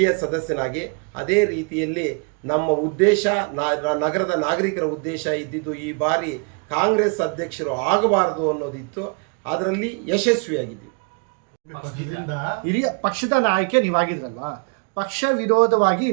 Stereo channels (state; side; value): quieter; left; 36.9 dB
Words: ಸದಸ್ಯನಾಗಿ. ಅದೇ ರೀತಿಯಲ್ಲಿ ನಮ್ಮ ಉದ್ದೇಶ, ನಗರದ ನಾಗರಿಕರ ಉದ್ದೇಶ ಇದ್ದಿದ್ದು ಈ ಬಾರಿ ಕಾಂಗ್ರೆಸ್ ಅಧ್ಯಕ್ಷರು ಆಗಬಾರದು ಅನ್ನೋದಿತ್ತು. ಅದರಲ್ಲಿ ಯಶಸ್ವಿಯಾಗಿದ್ದೀವಿ. ಹಿರಿಯ ಪಕ್ಷದ ನಾಯಕ ನೀವಾಗಿದ್ರಲ್ವಾ, ಪಕ್ಷ ವಿರೋಧವಾಗಿ